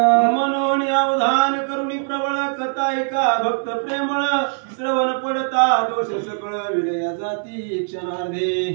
म्हणून अवधान करुणी प्रबळ कथा ऐका भक्त प्रेमळ. श्रवण पडता दोष सकळ विलया जाती क्षणार्धे.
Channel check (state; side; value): silent; left; 65 dB below the other